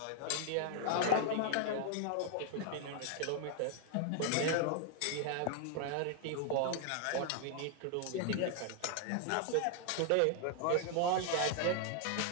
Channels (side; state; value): both; different; correlation 0.00